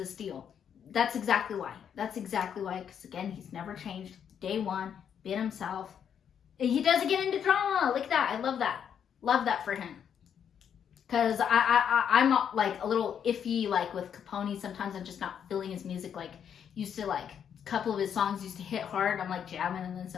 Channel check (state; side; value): quieter; right; 8.3 dB